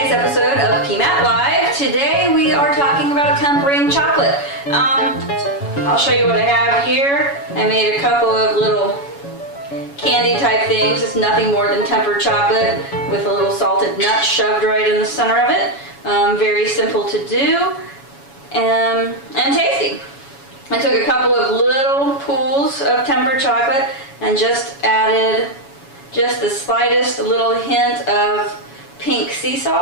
episode of PMAT Live. Today we are talking about tempering chocolate. I'll show you what I have here. I made a couple of little candy type things. It's nothing more than tempered chocolate with a little salted nut shoved right in the center of it. Very simple to do and tasty. I took a couple of little pools of tempered chocolate and just added just the slightest little hint of pink sea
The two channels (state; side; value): late; right; 7.1 ms